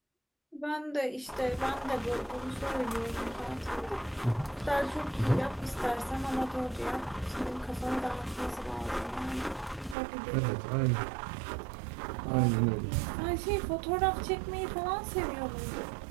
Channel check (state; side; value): drops out; left; at 10.0 s